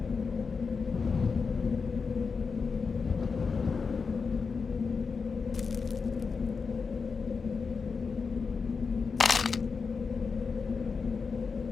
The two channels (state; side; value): quieter; right; 5.1 dB